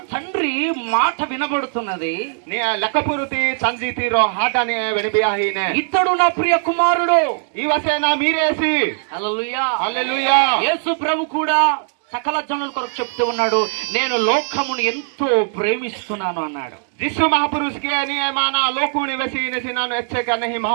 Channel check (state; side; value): silent; left; digital silence